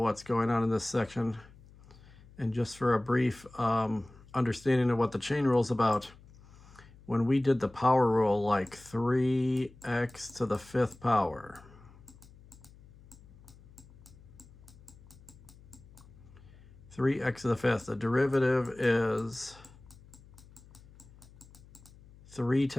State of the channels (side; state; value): left; noise; hum, 23 dB below the sound